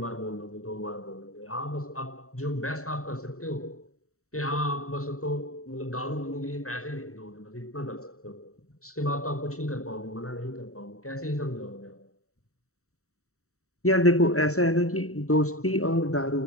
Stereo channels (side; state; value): right; late; 0.64 ms